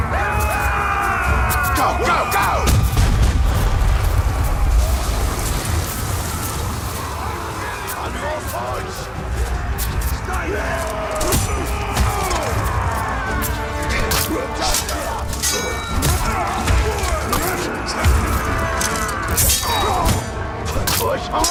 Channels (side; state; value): both; identical; correlation 1.00